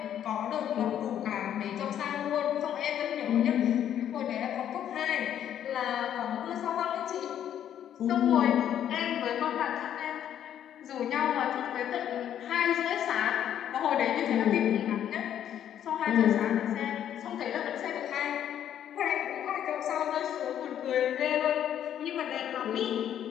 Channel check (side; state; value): right; quieter; 10.2 dB